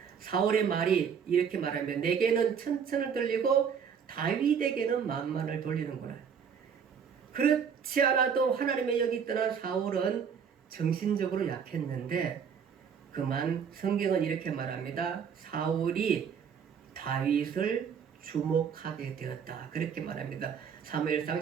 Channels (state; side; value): quieter; left; 7.1 dB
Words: 사울의 말이 이렇게 말하면 내게는 천천을 돌리고 다윗에게는 만만을 돌리는구나. 그렇지 않아도 하나님의 영이 떠난 사울은 정신적으로 약했는데 그만 성경은 이렇게 말합니다. 사울이 다윗을 주목하게 되었다. 그렇게 말합니다. 사무엘상